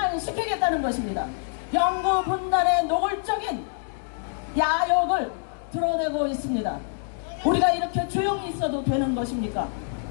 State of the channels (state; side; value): silent; right; digital silence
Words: 것입니다. 영구 분단의 노골적인 야욕을 드러내고 있습니다. 우리가 이렇게 조용히 있어도 되는 것입니까?